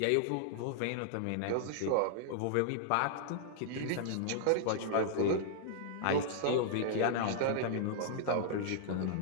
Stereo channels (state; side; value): different; both; correlation -0.01